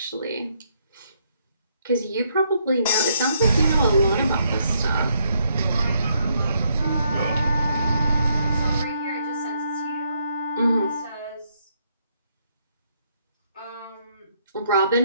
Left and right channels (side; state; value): both; inverted; correlation -0.73